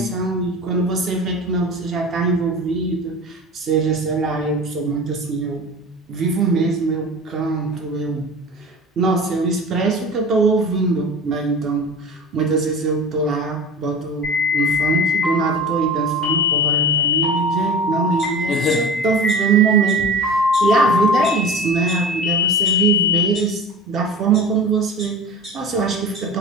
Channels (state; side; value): normal; both; correlation 0.36